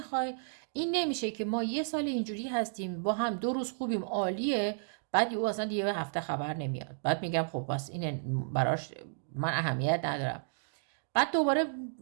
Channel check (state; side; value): silent; left; digital silence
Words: این نمیشه که ما یه سال اینجوری هستیم با هم 2 روز خوبیم عالیه، بعد یهو اصلا یه هفته خبر نمیاد، بعد میگم خب بس این براش من اهمیت ندارم. بعد دوباره